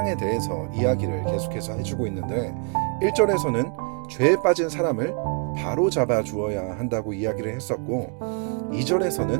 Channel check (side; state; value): left; quieter; 39.4 dB